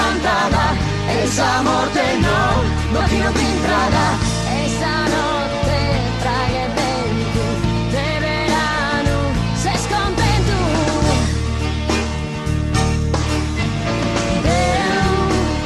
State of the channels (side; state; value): both; identical; correlation 1.00